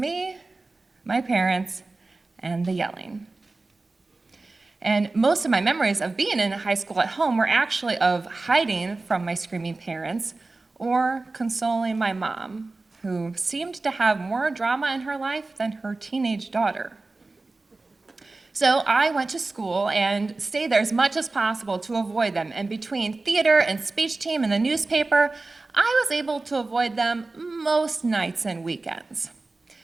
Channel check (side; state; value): left; quieter; 3.4 dB